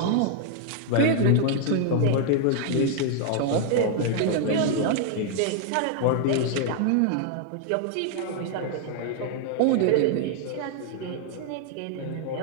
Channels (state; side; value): different; both; correlation 0.00